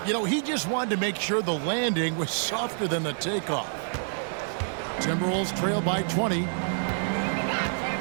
You know, he just wanted to make sure the landing was softer than the takeoff. Timberwolves trail by 20.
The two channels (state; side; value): silent; left; digital silence